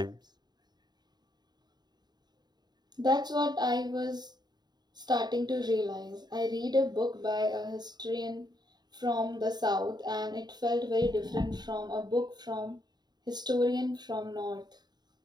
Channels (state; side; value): late; left; 0.20 ms